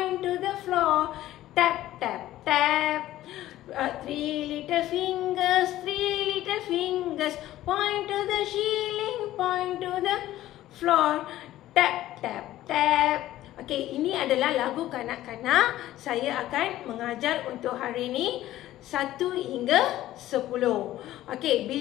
to the floor, tap, tap, tap. 3 little fingers, point to the ceiling, point to the floor, tap, tap, tap. Okey, ini adalah lagu kanak-kanak. Saya akan mengajar untuk hari ini 1 hingga 10. Okey,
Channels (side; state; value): right; quieter; 14.4 dB